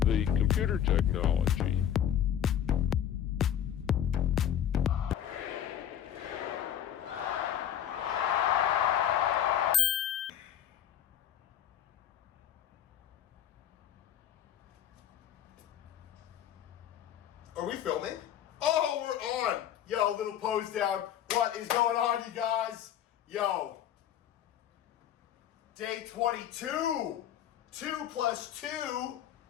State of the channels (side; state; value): right; quieter; 10.3 dB